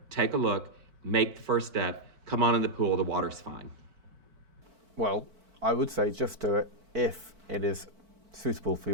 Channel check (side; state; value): left; late; 4.5 ms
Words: take a look, make the first step, come on in the pool, the water's fine. Well, I would say just do it if it is suitable for